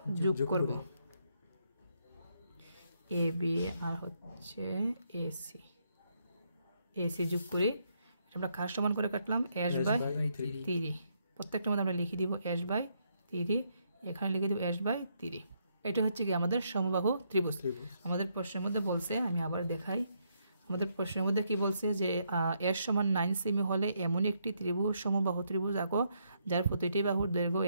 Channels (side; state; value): both; inverted; correlation -0.75